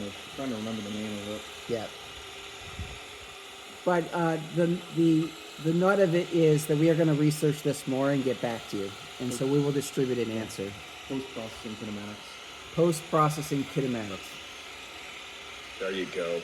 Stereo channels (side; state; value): both; identical; correlation 1.00